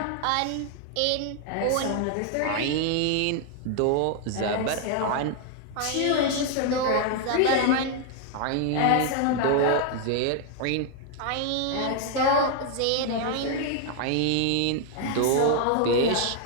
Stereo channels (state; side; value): different; both; correlation 0.00